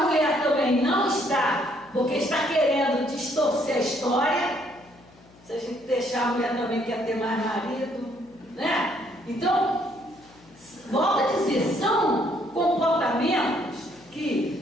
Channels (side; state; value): left; noise; hum, 27 dB below the sound